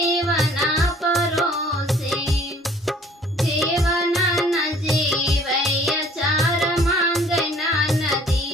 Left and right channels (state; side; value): normal; both; correlation 0.55